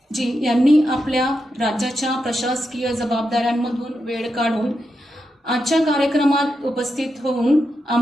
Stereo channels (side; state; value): both; normal; correlation 0.86